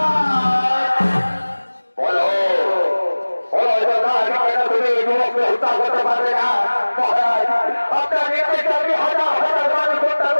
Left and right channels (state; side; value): inverted; both; correlation -1.00